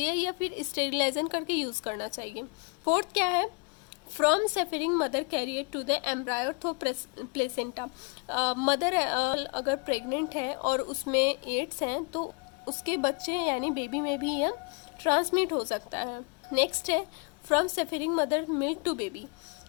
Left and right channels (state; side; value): quieter; right; 33.1 dB